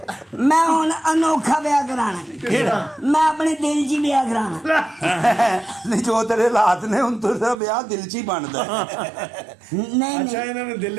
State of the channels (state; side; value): drops out; left; at 7.6 s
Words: ਮੈਂ ਹੁਣ ਅਨੋਖਾ ਵਿਆਹ ਕਰਾਣਾ ਮੈਂ ਆਪਣੇ ਦਿਲ 'ਚ ਹੀ ਵਿਆਹ ਕਰਾਣਾ ਨਹੀਂ ਜੋ ਤੇਰੇ ਹਾਲਾਤ ਨੇ ਹੁਣ ਤੇਰਾ ਵਿਆਹ ਦਿਲ 'ਚ ਹੀ ਬਣਦਾ ਨਹੀਂ ਅੱਛਾ ਨਹੀਂ ਇਹਨਾਂ ਨੇ